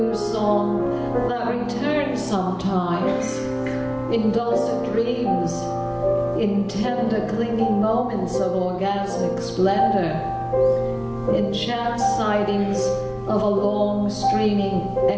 song that returns sometimes, in dulcet dreams, in tender clinging moments of orgasmic splendor, in chance sightings of a long streaming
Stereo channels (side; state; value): both; identical; correlation 1.00